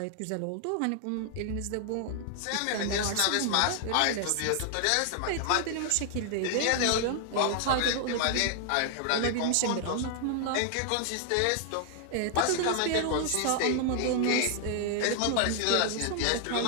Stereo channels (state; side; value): different; both; correlation -0.01